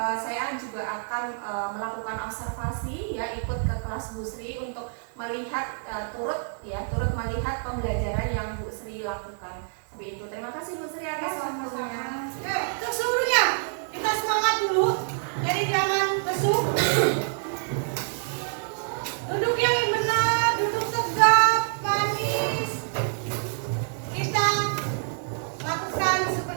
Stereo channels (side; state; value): left; silent; 60 dB below the other